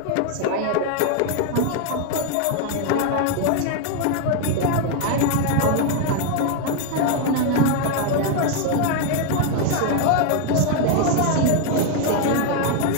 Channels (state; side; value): different; both; correlation 0.01